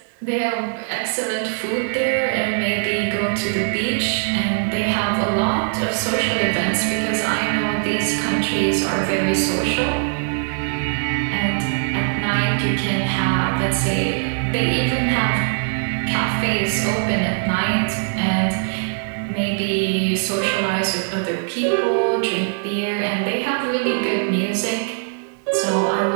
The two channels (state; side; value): silent; left; 57 dB below the other